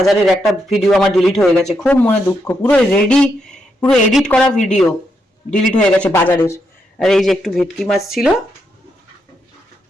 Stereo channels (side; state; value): both; normal; correlation 0.81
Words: একটা ভিডিও আমার ডিলিট হয়ে গেছে, খুব মনে দুঃখ। পুরো এডিট করা ভিডিও ডিলিট হয়ে গেছে বাজারের। আর এই যে একটু ভেটকি মাছ ছিল,